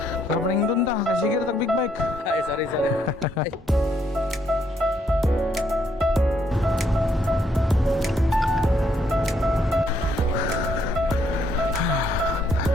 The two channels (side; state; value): both; normal; correlation 0.72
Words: Kapaning dun ta, kasi sige tag big bike. Ay, sorry. Ay.